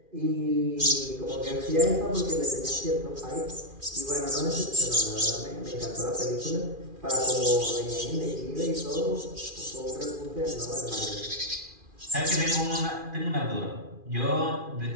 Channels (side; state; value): left; late; 2.4 ms